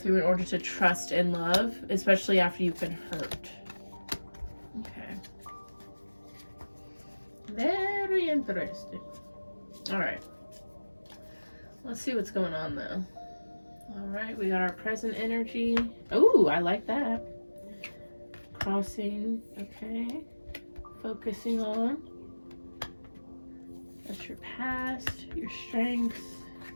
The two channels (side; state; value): both; inverted; correlation -1.00